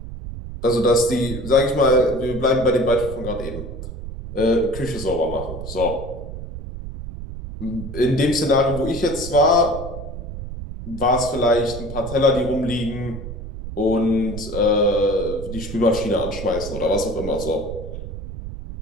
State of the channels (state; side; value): noise; right; rumble, 9 dB below the sound